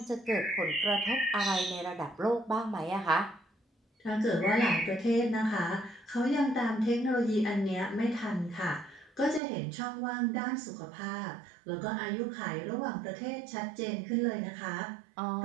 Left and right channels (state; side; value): drops out; left; at 9.4 s